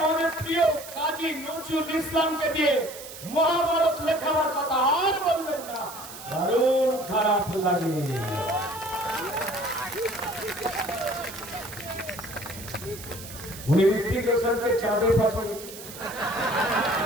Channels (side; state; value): right; noise; hiss, 13 dB below the sound